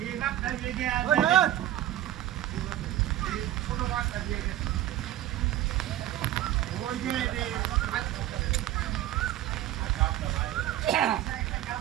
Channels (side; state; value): left; quieter; 13.3 dB